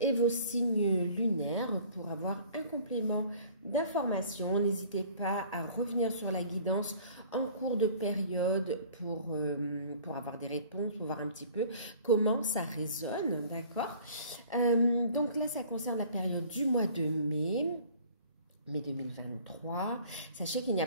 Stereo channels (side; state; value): both; inverted; correlation -0.50